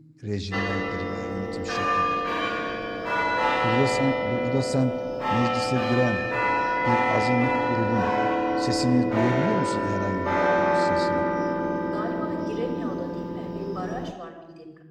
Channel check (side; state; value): both; identical; correlation 1.00